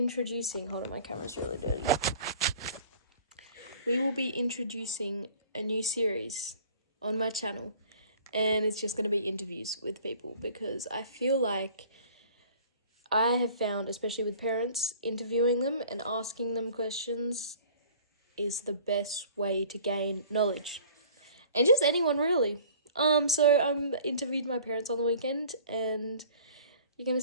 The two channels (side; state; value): both; inverted; correlation -0.49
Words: hold on, my camera's really dirty. We will be introducing a new series on my channel, and it's just going to be interviews with people, because I feel like I have found, especially with parents, interviewing them and asking them questions is the best way to gain knowledge. And just anyone, really. So I interviewed my parents on the weekend, and you're going to